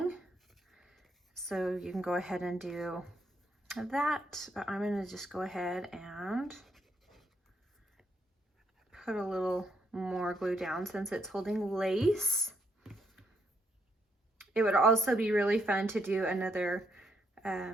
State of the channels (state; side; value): normal; both; correlation 0.75